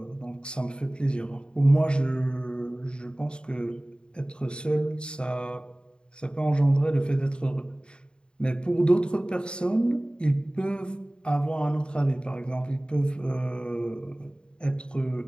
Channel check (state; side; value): late; right; 0.051 ms